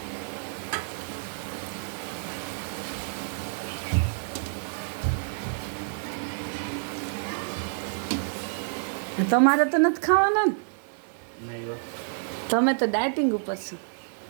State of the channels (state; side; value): silent; left; digital silence